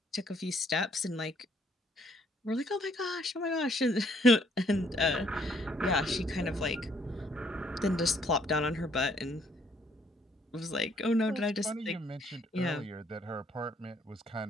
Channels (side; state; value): both; normal; correlation 0.66